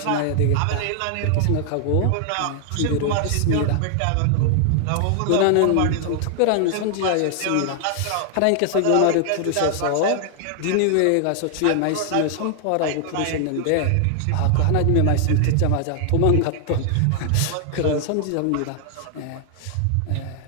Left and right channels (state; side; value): different; both; correlation 0.00